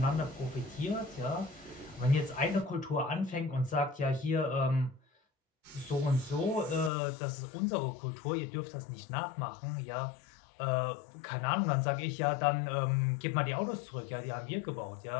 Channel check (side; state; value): right; drops out; at 6.9 s